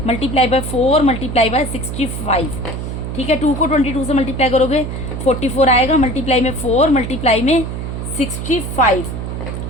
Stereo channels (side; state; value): right; noise; hum, 5 dB below the sound